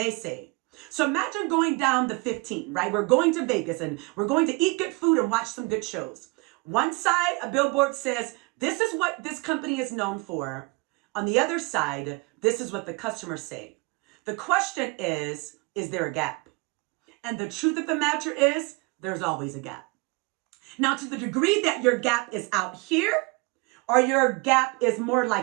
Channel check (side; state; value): left; quieter; 27.4 dB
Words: say? So imagine going down the 15, right? We're going to Vegas and we're going to eat good food and watch some good shows. One side, a billboard says, this is what this company is known for. On the other side, this is what the customers say. The question is there a gap? And the truth of the matter is, there's always a gap. Now, to the degree that your gap is out here, or your gap is more